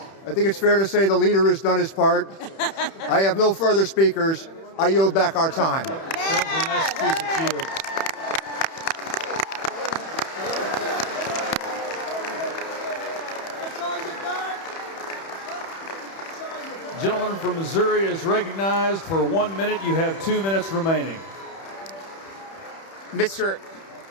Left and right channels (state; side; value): late; right; 31 ms